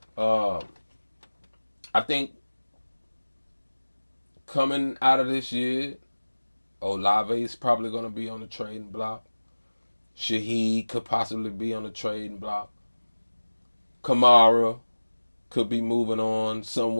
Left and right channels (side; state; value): both; inverted; correlation -1.00